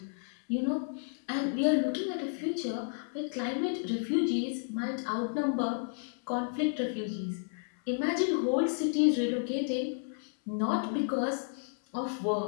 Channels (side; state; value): right; silent; 57 dB below the other